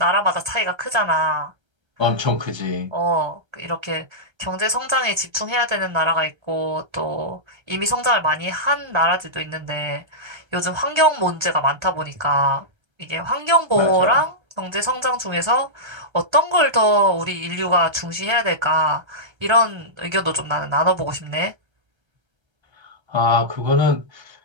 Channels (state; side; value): late; left; 1.3 ms